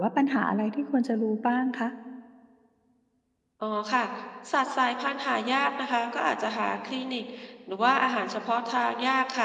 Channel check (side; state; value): both; identical; correlation 1.00